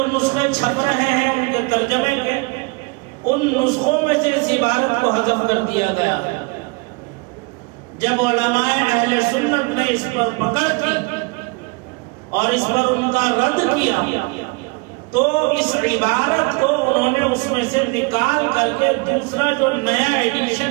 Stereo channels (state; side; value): quieter; left; 29.1 dB